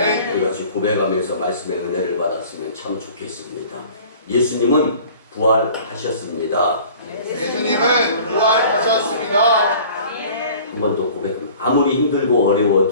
우리 같이 고백하면서 말씀의 은혜를 받았으면 참 좋겠습니다. 예수님은 부활하셨습니다. 예수님은 부활하셨습니다. 한 번 더 고백합니다. 아무리 힘들고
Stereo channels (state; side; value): inverted; both; correlation -0.47